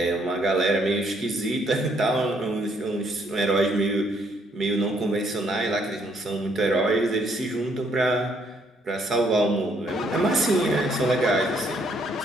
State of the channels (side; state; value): both; normal; correlation 0.69